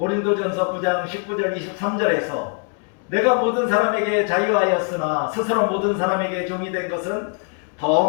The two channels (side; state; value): right; quieter; 37.6 dB